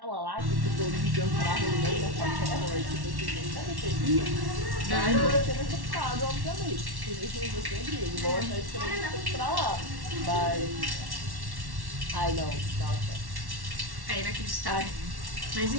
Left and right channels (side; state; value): left; late; 1.1 ms